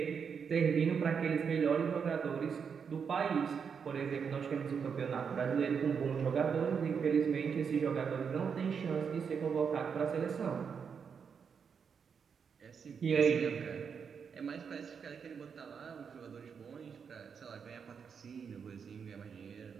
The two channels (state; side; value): quieter; left; 6.5 dB